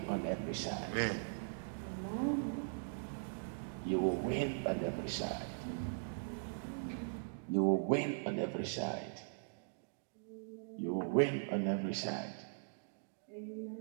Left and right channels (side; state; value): left; silent; digital silence